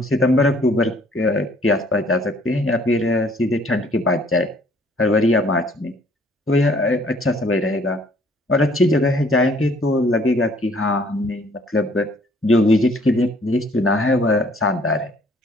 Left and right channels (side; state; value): both; normal; correlation 0.60